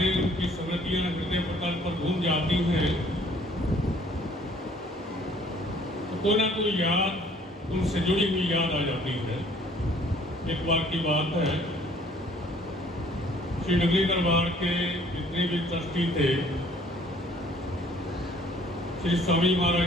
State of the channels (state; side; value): normal; both; correlation 0.58